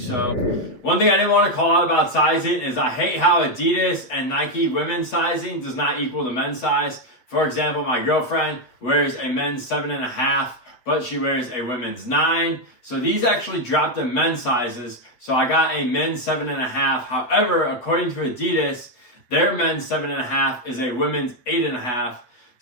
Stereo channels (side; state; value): right; late; 8.1 ms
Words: One thing I didn't want to call out about sizing is I hate how Adidas and Nike women's sizing does not equal the men's size. For example, my girlfriend wears a men's 7.5, but she wears a women's 9. So these actually dropped the men's sizes. So I got a men's 7.5. However, according to Adidas, their men's 7.5 is a women's 8.5.